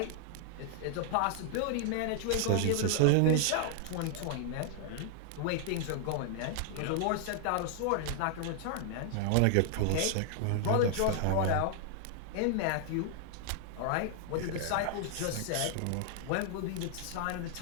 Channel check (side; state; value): both; different; correlation 0.00